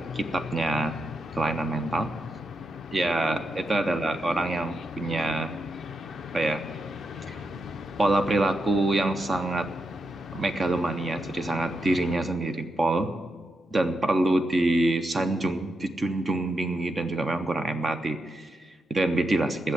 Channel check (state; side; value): normal; both; correlation 0.85